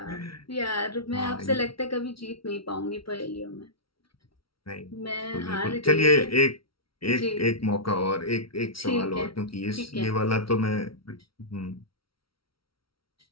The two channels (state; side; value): late; right; 0.75 ms